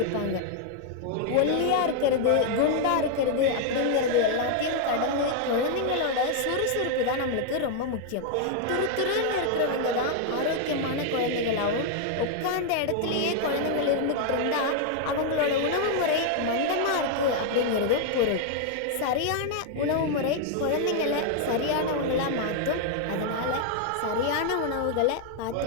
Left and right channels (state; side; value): different; both; correlation 0.00